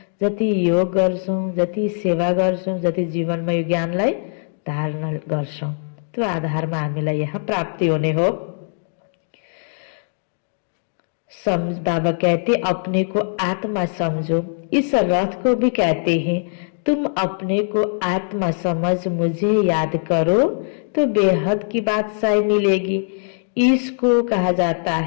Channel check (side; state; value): right; silent; digital silence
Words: जति योग गर्छौँ, जति सेवा गर्छौँ, जति जीवनमा यो ज्ञानलाई धारण गर्छौँ, त्यो आधारमा हामीलाई यहाँ प्राप्ति हुने हो। बाबा कहते अपने को आत्मा समझो। इस रथ को भी कहते हैं, तुम अपने को आत्मा समझ मुझे याद करो तो बेहद की बादशाही मिलेगी। इसको कहा जाता